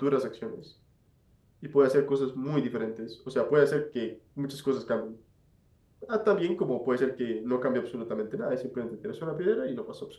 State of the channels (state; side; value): identical; both; correlation 1.00